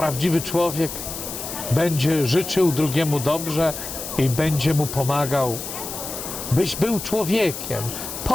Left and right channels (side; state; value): left; noise; hiss, 8 dB below the sound